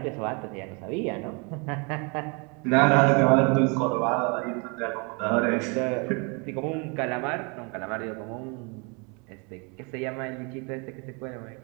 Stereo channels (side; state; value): left; quieter; 32.5 dB